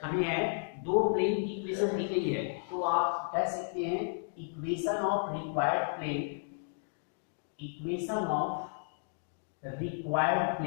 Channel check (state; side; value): silent; right; digital silence